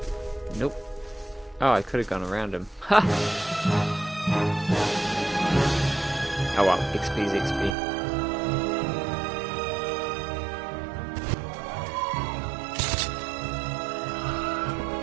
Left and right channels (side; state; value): left; drops out; at 7.8 s